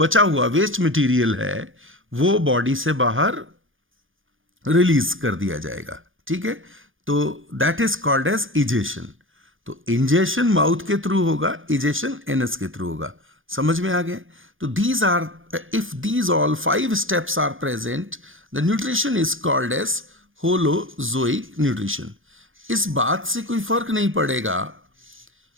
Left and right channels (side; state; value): left; late; 0.58 ms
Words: हुआ वेस्ट मटेरियल है वो बॉडी से बाहर रिलीज कर दिया जाएगा। ठीक है। तो that is called as egestion. तो इंजेशन माउथ के थ्रू होगा, इजेशन एनस के थ्रू होगा। समझ में आ गया? तो these are, if these all 5 steps are present, the nutrition is called as holozoic nutrition. इस बात से कोई फर्क नहीं पड़ेगा